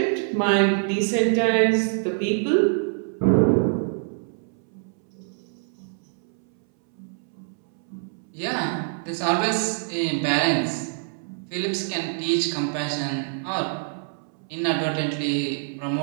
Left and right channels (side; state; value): left; silent; 62 dB below the other